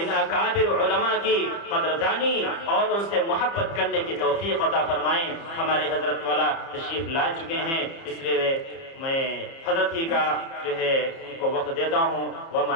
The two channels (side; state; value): right; late; 30 ms